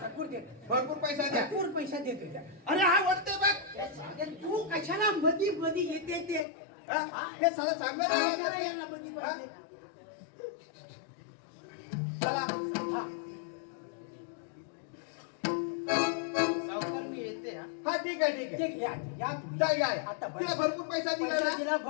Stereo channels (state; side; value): drops out; right; at 6.5 s